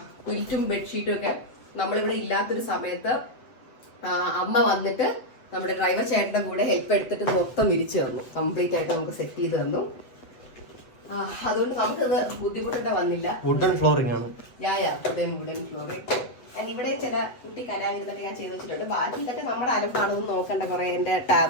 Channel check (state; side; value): late; right; 7.9 ms